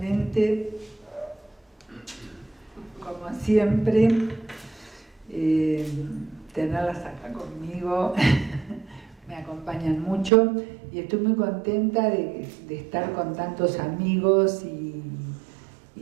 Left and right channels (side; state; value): left; drops out; at 10.3 s